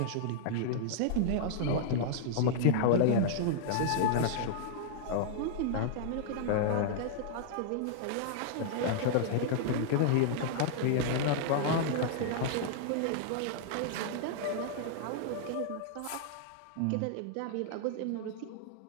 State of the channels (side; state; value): both; different; correlation -0.01